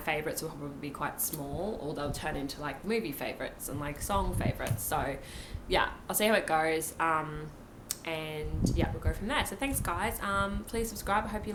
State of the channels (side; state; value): both; identical; correlation 1.00